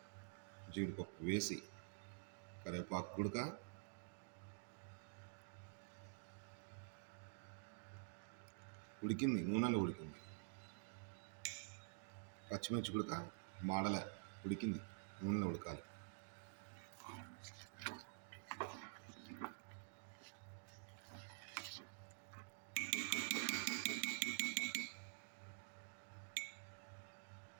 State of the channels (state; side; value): silent; left; digital silence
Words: జీడిపప్పు వేసి కరివేపాకు గుడక, ఉడికింది, నూనెలో ఉడికింది. పచ్చిమిర్చి గుడక మాడలే, ఉడికింది, నూనెలో ఉడకాలి.